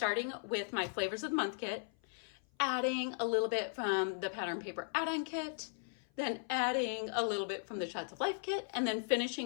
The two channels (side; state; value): right; silent; 53 dB below the other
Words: with my Flavors of the Month kit, adding a little bit from the pattern paper add-on kit, then adding a little bit from the Shots of Life kit, and then